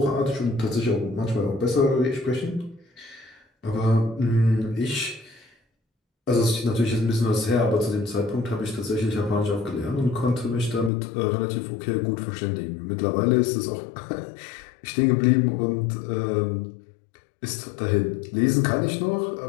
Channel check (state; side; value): drops out; right; at 10.9 s